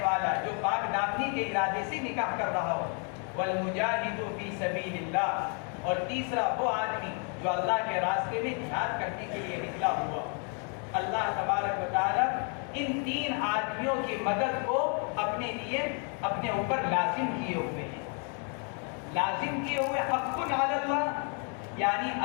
والا جو پاک دامنی کے ارادے سے نکاح کر رہا ہو. والمجاہد فی سبیل اللہ، اور تیسرا وہ آدمی جو اللہ کے راستے میں جہاد کرنے کے لیے نکلا ہوا. اللہ تبارک و تعالی ان تین آدمیوں کی مدد کو اپنے لیے اپنے اوپر لازم کیے ہوئے ہیں. لازم کیے ہوئے حق علی اللہ، یعنی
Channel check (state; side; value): quieter; right; 39.9 dB